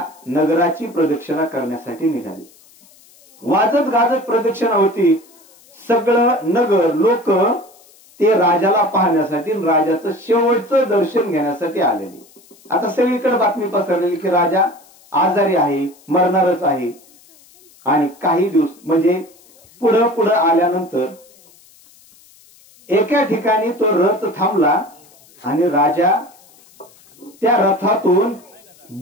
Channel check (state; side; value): noise; left; hiss, 28 dB below the sound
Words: नगराची प्रदक्षिणा करण्यासाठी निघाले. वाजत गाजत प्रदक्षिणा होती. सगळं नगर, लोक ते राजाला पाहण्यासाठी, राजाचं शेवटचं दर्शन घेण्यासाठी आलेले. आता सगळीकडे बातमी पसरलेली की राजा आजारी आहे, मरणारच आहे. आणि काही दिवस, म्हणजे पुढं आल्यानंतर एका ठिकाणी तो रथ थांबला, आणि राजा त्या रथातून